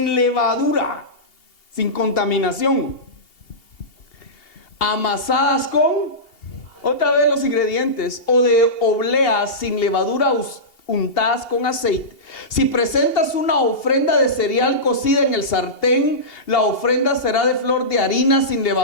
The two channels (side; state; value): right; late; 2.8 ms